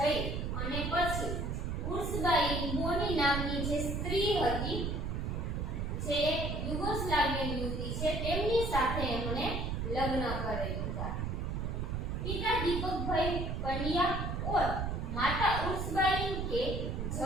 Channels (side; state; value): right; noise; rumble, 1 dB below the sound